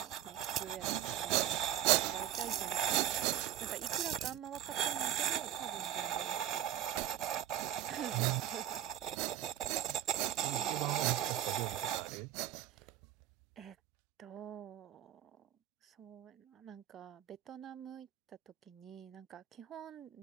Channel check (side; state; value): left; quieter; 11.6 dB